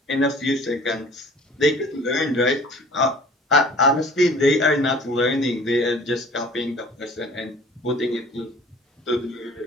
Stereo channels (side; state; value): both; normal; correlation 0.49